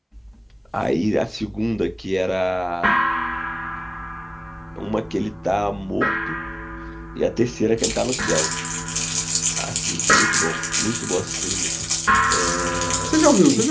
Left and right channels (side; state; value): both; identical; correlation 1.00